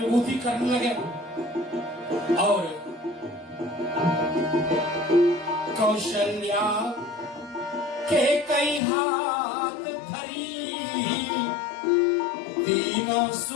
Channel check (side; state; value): right; drops out; at 8.8 s